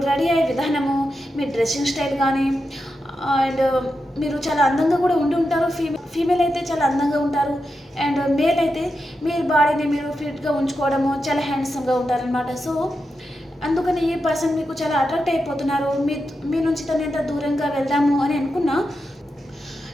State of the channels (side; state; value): both; normal; correlation 0.88